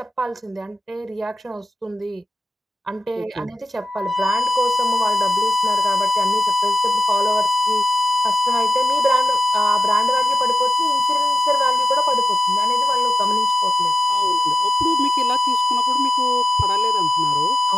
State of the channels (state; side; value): normal; both; correlation 0.90